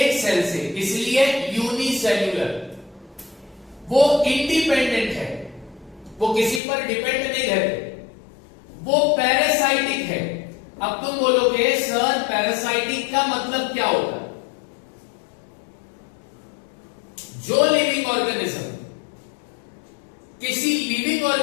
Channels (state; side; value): drops out; right; at 6.6 s